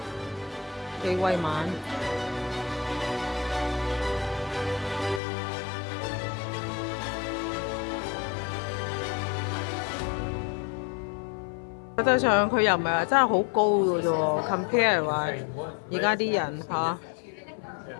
幾威猛。實際上佢又唔係話真係好高嘅啫喎 ，compare 話而家啲人嚇，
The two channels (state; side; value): drops out; right; at 5.2 s